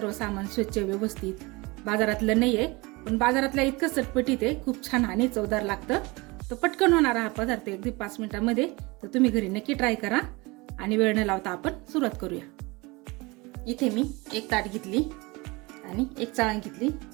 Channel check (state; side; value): quieter; left; 24.6 dB